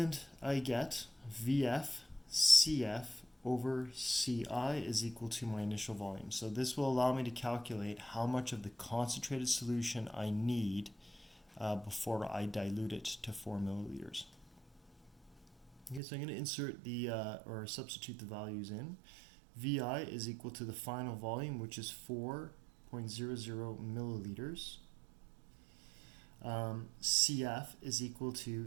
I get VF CF over CI is equal to my initial volume. So this will allow me to calculate how much of the concentrated solution I need before I dilute it to 4 milliliters. Okay, so I'm going to insert the, or substitute the values in. VI is equal to the final volume, which is 4.00 milliliters. CF is equal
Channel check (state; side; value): drops out; left; at 16.0 s